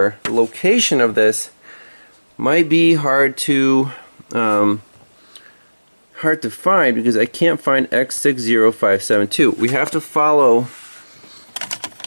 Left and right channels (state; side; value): inverted; both; correlation -1.00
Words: the location of this might be hard to find because I can't find X60572. We have to follow